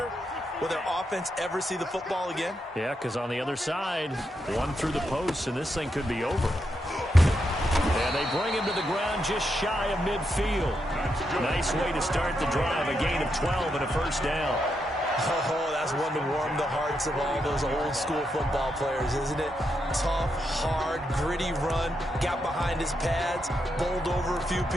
will their offense ever see the football again? Yeah, because on the other side, one through the post, and this thing could be over. And they bring him to the ground just shy of midfield. Nice way to start the drive. A gain of 12 and a 1st down. Oh, that's one to warm the hearts of all those old-school football players, isn't it? Tough, hard, gritty run, got behind his pads, bowled over a few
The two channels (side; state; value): both; normal; correlation 0.83